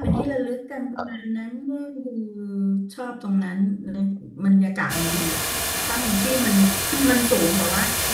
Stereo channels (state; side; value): identical; both; correlation 1.00